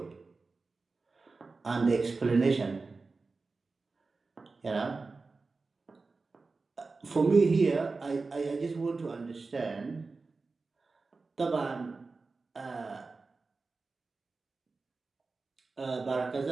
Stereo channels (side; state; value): left; quieter; 4.0 dB